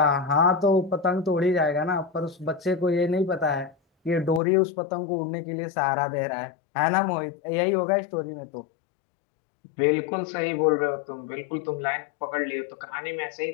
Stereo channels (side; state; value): right; drops out; at 4.4 s